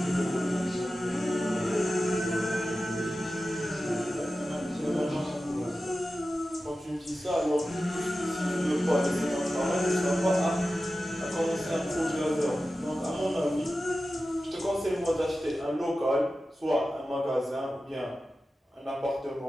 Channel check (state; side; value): normal; both; correlation 0.94